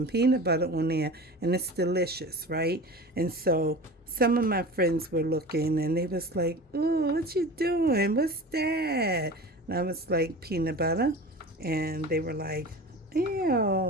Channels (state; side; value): normal; both; correlation 0.35